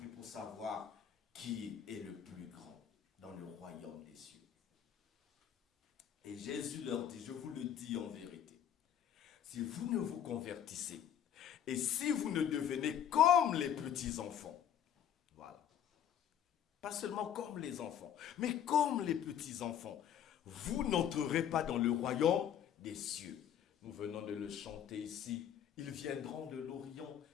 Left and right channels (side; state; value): right; quieter; 9.4 dB